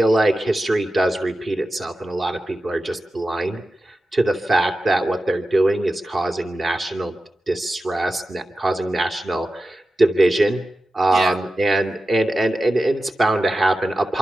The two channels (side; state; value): both; normal; correlation 0.93